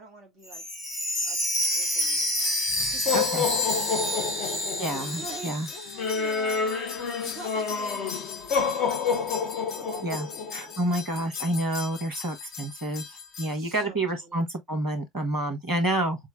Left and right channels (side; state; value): both; normal; correlation 0.34